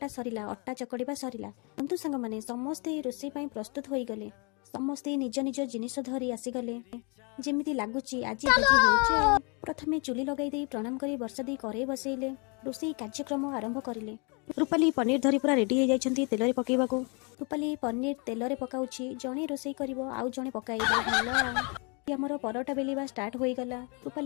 सरिला अट्टा चकड़ीबा सरिला किंतु सांगमाने समस्ते रोषेई पाई प्रस्तुत होई गले समस्ते निज निज जिनिस धरी आसीगले जेमिति लागुची आज भोजी हेउची प्रथमे चुली लगाई दे प्रणाम करी वर्षा दी करे बसैले रोषेई कार्यक्रम आरंभ करिले रूपाली पनीर धरी पूरा रेडी हो जाइछंती तेलरे पकेइबाकू रूपाली पनीर तेलरे पकाउची जणे रोषेई करिवो आउ जणे पकाइबो भलो आमर परोटा बेलिबा स्टार्ट होई गला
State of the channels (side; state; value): right; quieter; 33.9 dB